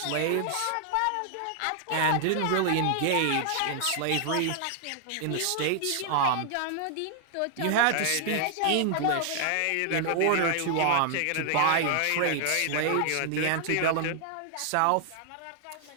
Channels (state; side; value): different; both; correlation 0.00